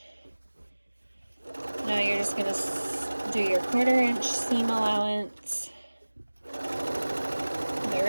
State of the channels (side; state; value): both; inverted; correlation -1.00